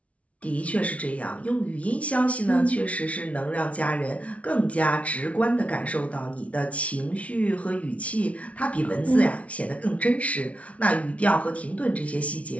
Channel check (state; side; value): late; right; 0.065 ms